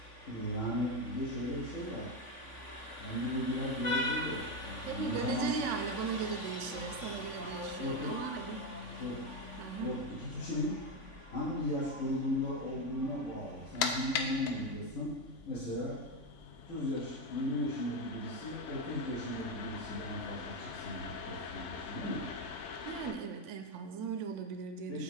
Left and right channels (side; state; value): right; late; 3.5 ms